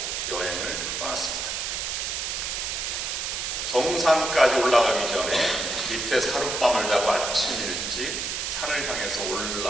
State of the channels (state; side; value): noise; right; hiss, 2 dB below the sound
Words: 여행을 떠났습니다. 정상까지 올라가기 전에 밑에 하룻밤을 자고 아침 일찍 산을 향해서